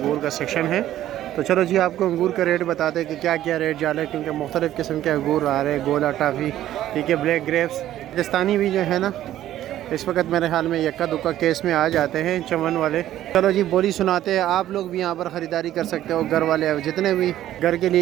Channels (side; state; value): left; quieter; 12.9 dB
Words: का सेक्शन है। तो चलो जी, आपको अंगूर का रेट बताते हैं कि क्या क्या रेट जा रहे हैं, क्योंकि मुख्तलिफ़ किस्म के अंगूर आ रहे हैं। गोला टाफ़ी, ठीक है, ब्लैक ग्रेप्स, पाकिस्तानी भी जो है ना, इस वक्त मेरे ख्याल में यक्का दुक्का केस में आ जाते हैं चमन वाले। चलो जी, बोली सुनाते हैं। आप लोग भी यहाँ पर ख़रीदारी कर सकते हो। घर वाले जितने भी घर के